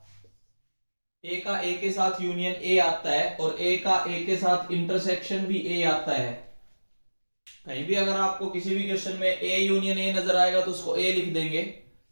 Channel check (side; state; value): both; inverted; correlation -1.00